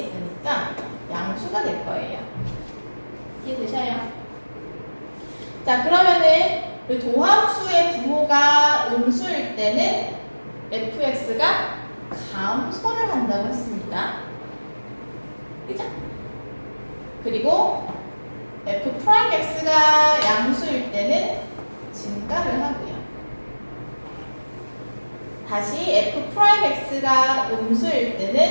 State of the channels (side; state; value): both; inverted; correlation -1.00